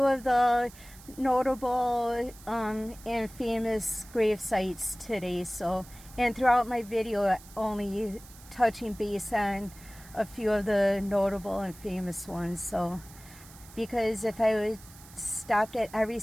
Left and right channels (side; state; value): right; noise; hiss, 20 dB below the sound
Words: of the notable and famous grave sites today. So, and throughout my video, only touching base on a few of the notable and famous ones. So, because if I would stopped at every